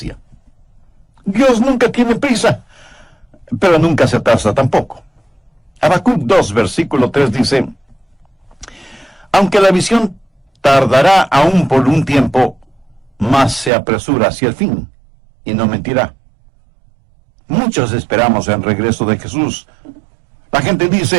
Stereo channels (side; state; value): left; drops out; at 13.7 s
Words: Dios nunca tiene prisa, pero nunca se atrasa tampoco. Habacuc 2, versículo 3 dice, aunque la visión tardará aún por un tiempo, mas se apresura hacia el fin, y no mentirá. Muchos esperamos el regreso de Jesús. La gente